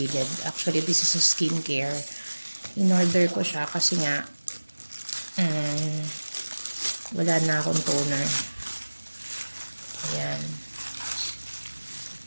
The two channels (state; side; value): inverted; both; correlation -1.00